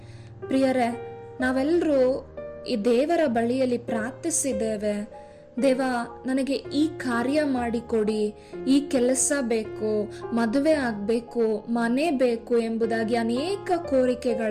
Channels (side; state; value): both; identical; correlation 1.00